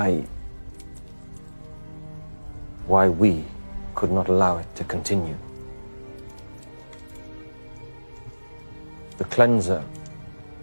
we could not allow it to continue. The cleanser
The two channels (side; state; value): both; inverted; correlation -1.00